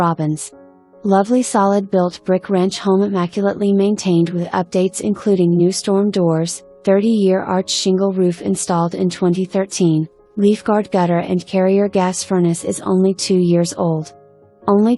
Lovely solid built brick ranch home immaculately maintained with updates including new storm doors, 30-year arch shingle roof installed in 2013, Leafguard gutter and carrier gas furnace is only 2 years old. Only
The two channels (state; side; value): identical; both; correlation 1.00